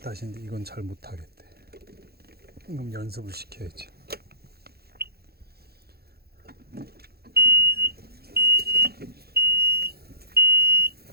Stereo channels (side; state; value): left; late; 0.46 ms